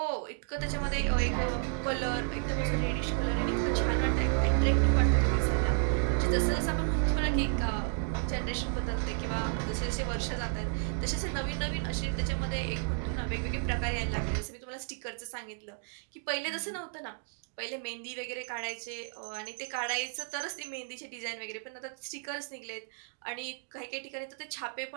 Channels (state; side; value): silent; left; 56 dB below the other